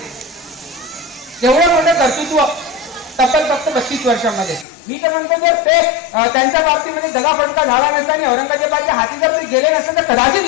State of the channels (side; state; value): right; drops out; at 4.7 s